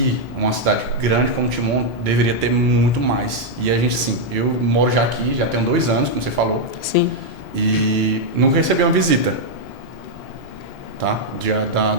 uma cidade grande como Timon, deveria ter muito mais. E a gente, sim, eu moro já aqui, já tenho 2 anos, como você falou. Sim. E nunca recebi uma visita, tá?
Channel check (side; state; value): both; normal; correlation -0.02